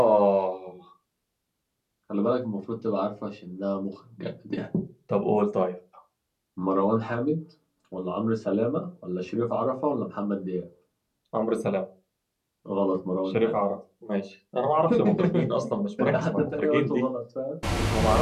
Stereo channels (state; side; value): identical; both; correlation 1.00